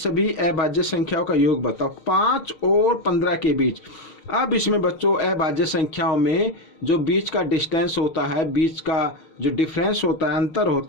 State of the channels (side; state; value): right; late; 6.5 ms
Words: अभाज्य संख्याओं का योग बताओ। 5 और 15 के बीच। अब इसमें बच्चों अभाज्य संख्याओं में जो बीच का डिस्टेंस होता है, बीच का जो डिफरेंस होता है, अंतर